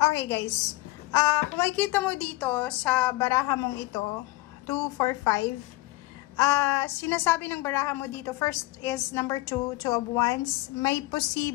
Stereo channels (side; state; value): right; quieter; 20.4 dB